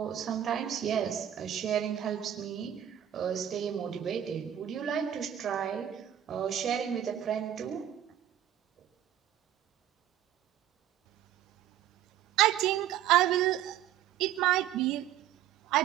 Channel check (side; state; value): left; quieter; 11.1 dB